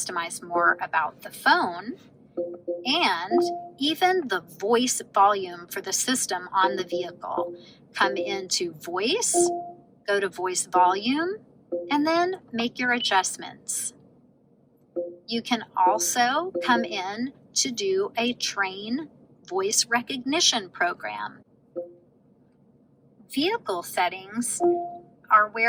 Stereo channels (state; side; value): identical; both; correlation 1.00